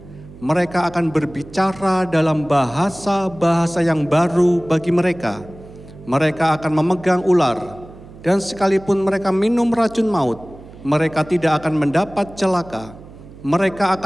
Mereka akan berbicara dalam bahasa-bahasa yang baru bagi mereka. Mereka akan memegang ular. Dan sekalipun mereka minum racun maut, mereka tidak akan mendapat celaka. Mereka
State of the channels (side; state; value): right; noise; hum, 19 dB below the sound